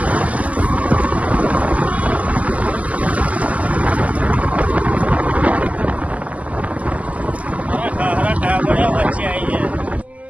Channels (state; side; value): late; left; 0.072 ms